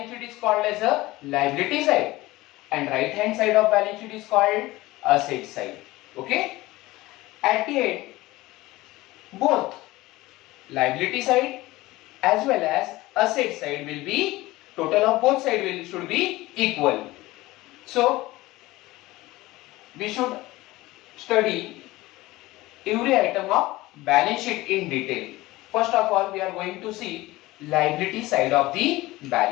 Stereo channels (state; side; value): quieter; right; 19.0 dB